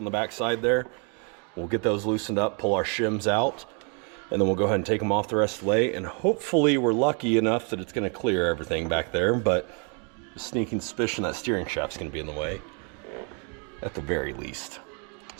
the back side there. We'll get those loosened up, pull our shims out, and then we'll go ahead and take them off the rest of the way, and hopefully we're lucky enough that it's going to clear everything back there, but a sneaking suspicion that steering shaft's going to be in the way. At the very least.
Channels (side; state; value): left; quieter; 36.9 dB